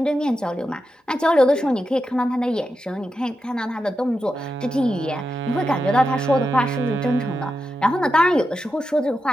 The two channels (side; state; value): both; normal; correlation 0.88